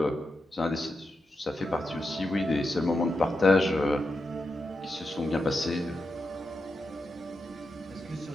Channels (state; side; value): normal; both; correlation 0.87